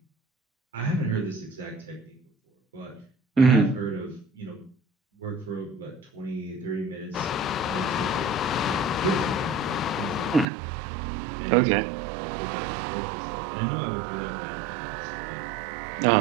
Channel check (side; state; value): left; drops out; at 10.5 s